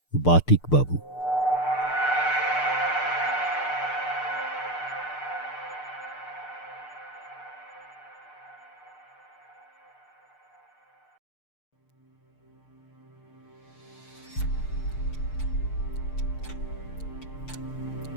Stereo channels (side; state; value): right; late; 6.7 ms